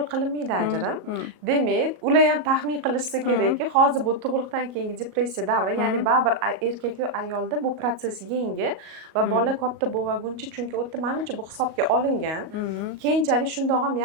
qilinmaydi ajrim. Demak, ular ham taxmin qilishsa kerakki, hozir bu tug'ruqdan keyingi depressiya davri, ya'ni baribir erkak va ayolda bu prosess yangi va bola katta bo'lmaguncha, chunki o'tda menimcha bu hisobga olingan. Keyinchalik shundoq ham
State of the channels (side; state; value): left; late; 38 ms